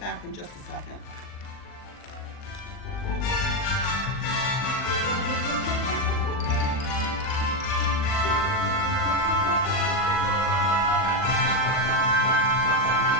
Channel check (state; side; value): late; right; 39 ms